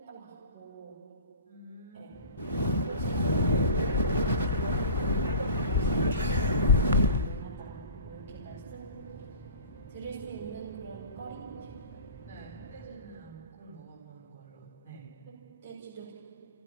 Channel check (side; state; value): both; inverted; correlation -0.38